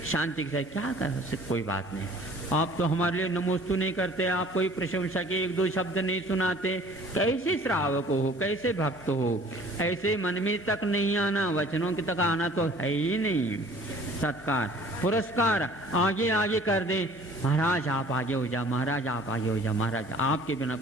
शांति के साथ क्या कर सकते, कोई बात नहीं। आप तो हमारे लिए नमोस्तु नहीं करते, आप कोई प्रशंसा के एक दो शब्द नहीं सुनाते, कैसे श्रावक हो, कैसे भक्त हो, ऐसे मन में तक नहीं आना, वचनों के तक आना तो है ही नहीं। सत्कार, पुरस्कार आगे आगे कर दे, महाराज आप आगे हो जा, महाराज आप आगे हो जा, महाराज आपके बिना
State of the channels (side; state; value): left; noise; hum, 26 dB below the sound